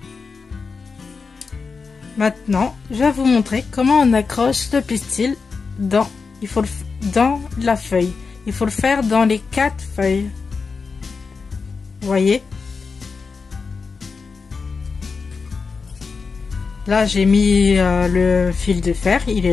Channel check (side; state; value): right; quieter; 4.8 dB